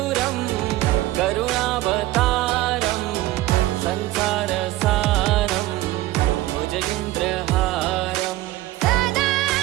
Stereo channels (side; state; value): left; quieter; 16.6 dB